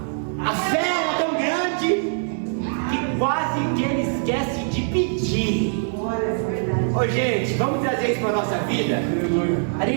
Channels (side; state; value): left; silent; digital silence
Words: fé era tão grande, que quase que ele esquece de pedir. Ô gente, vamos trazer isso para a nossa vida? A